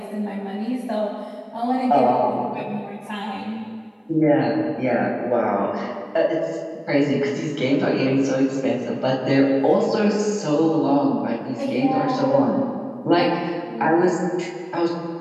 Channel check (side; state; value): both; identical; correlation 1.00